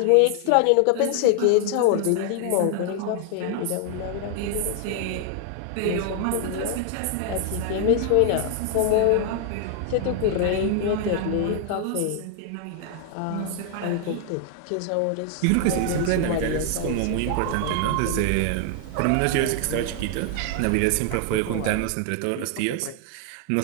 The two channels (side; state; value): both; different; correlation 0.00